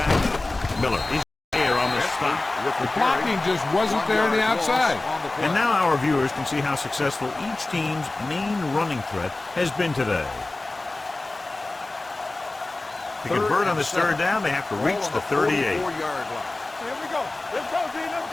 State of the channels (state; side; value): quieter; right; 3.0 dB